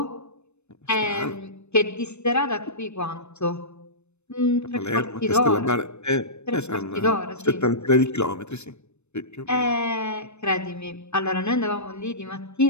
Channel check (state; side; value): late; right; 0.81 ms